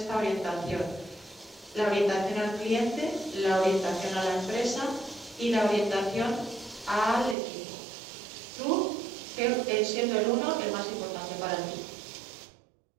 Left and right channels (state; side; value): drops out; left; at 7.4 s